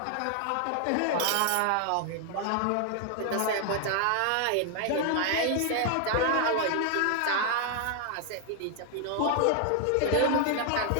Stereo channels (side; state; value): both; different; correlation 0.00